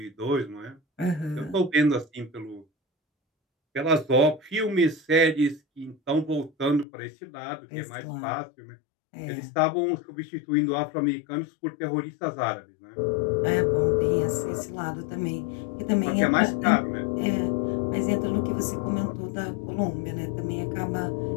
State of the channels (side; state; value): right; drops out; at 6.9 s